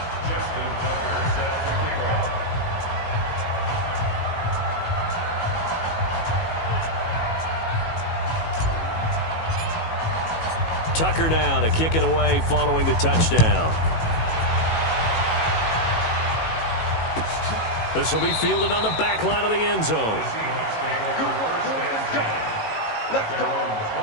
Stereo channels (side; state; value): right; late; 18 ms